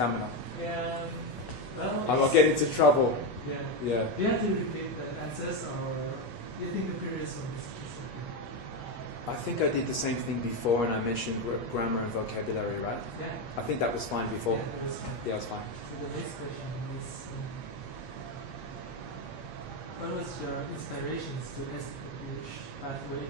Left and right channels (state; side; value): late; right; 8.2 ms